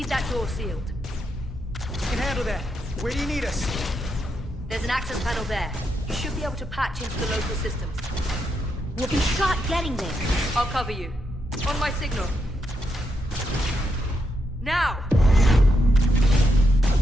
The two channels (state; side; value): normal; both; correlation 0.82